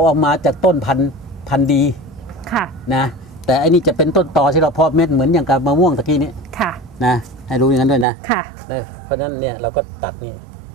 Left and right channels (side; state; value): left; drops out; at 8.1 s